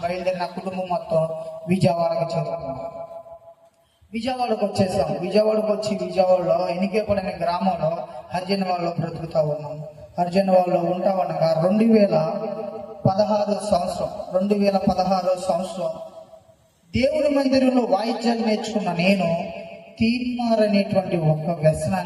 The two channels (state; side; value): identical; both; correlation 1.00